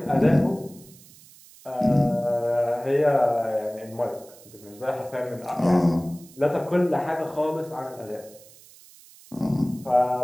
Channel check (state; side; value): noise; right; hiss, 23 dB below the sound